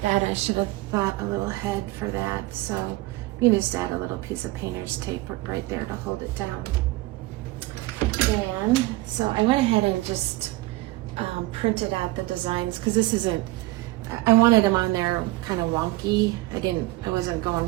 that, I should have thought a little ahead for that. So you just add a little piece of painter's tape right there to hold it down. And so I went ahead and just printed out the designs because this isn't, I wanted them on there kind of wonky. I wasn't going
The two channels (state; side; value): quieter; left; 19.5 dB